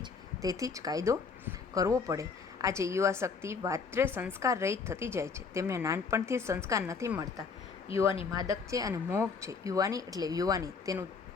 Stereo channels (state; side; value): quieter; right; 5.1 dB